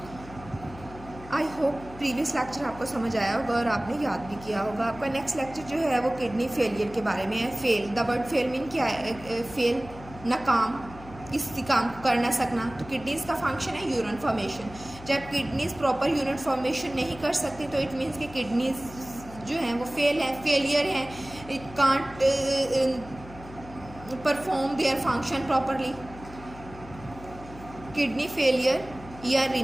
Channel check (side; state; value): left; noise; hum, 17 dB below the sound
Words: आई होप प्रीवियस लेक्चर आपको समझ आया होगा और आपने याद भी किया होगा। आपका नेक्स्ट लेक्चर जो है वो किडनी फेलियर के बारे में है। Fail, the word fail mean क्या है? फेल, नाकाम, किसी काम को कर ना सकना। तो किडनीज का फंक्शन है यूरिन फॉर्मेशन। जब किडनीज प्रॉपर यूरिन फॉर्मेशन नहीं कर सकती तो इट मीन्स कि किडनीज जो हैं वो फेल हैं, फेलियर हैं, it can't perform their function properly. Kidney failure या